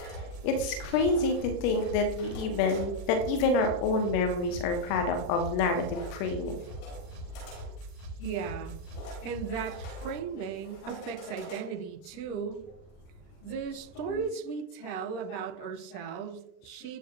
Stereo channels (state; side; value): late; right; 40 ms